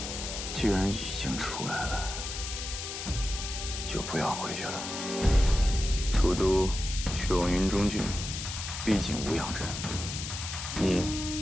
既然已经出来了，就不要回去了。楚都去往云中郡，毕竟无恙镇，你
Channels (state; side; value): noise; left; hiss, 6 dB below the sound